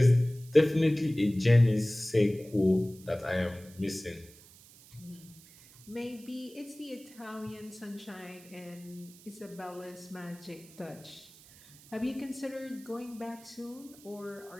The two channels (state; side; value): noise; right; hiss, 22 dB below the sound